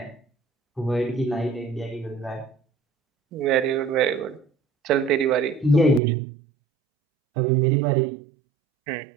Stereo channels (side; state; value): left; drops out; at 6.0 s